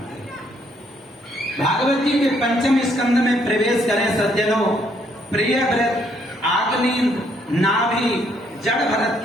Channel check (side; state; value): both; normal; correlation 0.69